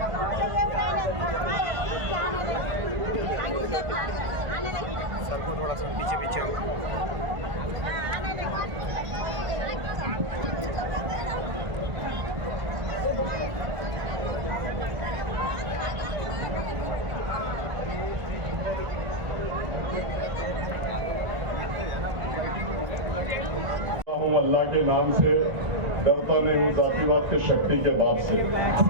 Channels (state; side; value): late; left; 1.5 ms